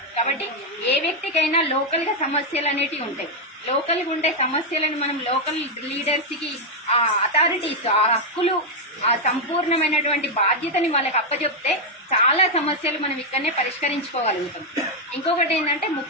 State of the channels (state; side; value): normal; both; correlation 0.00